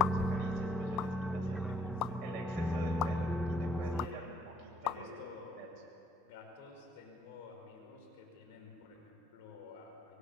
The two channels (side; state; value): both; normal; correlation 0.67